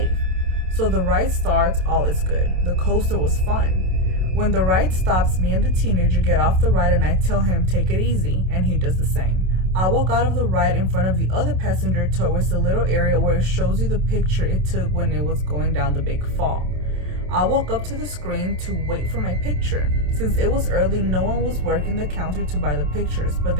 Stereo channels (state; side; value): late; left; 27 ms